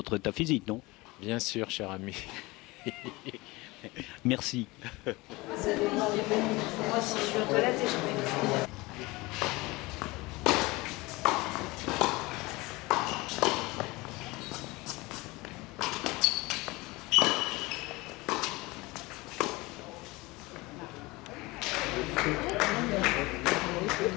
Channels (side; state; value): right; quieter; 22.5 dB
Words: état physique, non? Bien sûr, cher ami. Merci. Moi, si je suis aux toilettes et je vais...